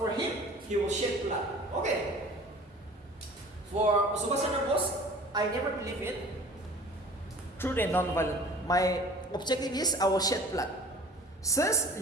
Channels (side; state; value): both; normal; correlation 0.45